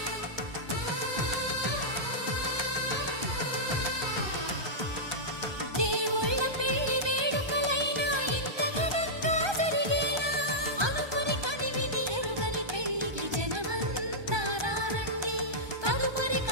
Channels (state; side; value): late; left; 1.2 ms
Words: దేవుళ్ళ పెళ్లి వేడుకలైనా ఇంత ఘనంగా జరిగేనా అనుకుని కదివిని ఎరుగని పెళ్లికి జనమంతా రారండి తదుపరి